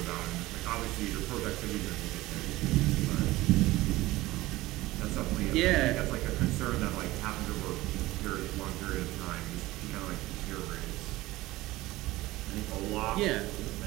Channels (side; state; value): left; quieter; 18.3 dB